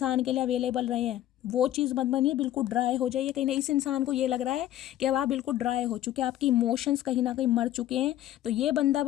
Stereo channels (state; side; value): quieter; right; 13.1 dB